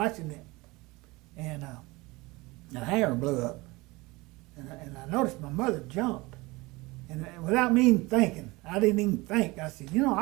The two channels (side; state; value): left; quieter; 22.9 dB